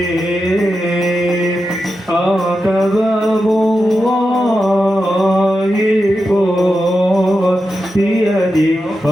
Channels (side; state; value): both; normal; correlation 0.89